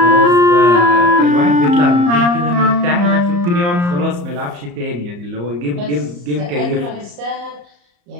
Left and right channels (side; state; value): left; late; 34 ms